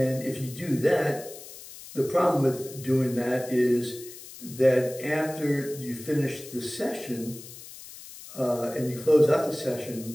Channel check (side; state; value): left; noise; hiss, 15 dB below the sound